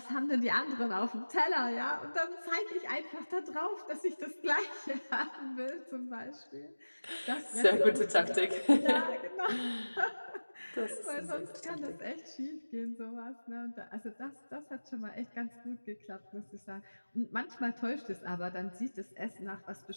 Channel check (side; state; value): both; inverted; correlation -1.00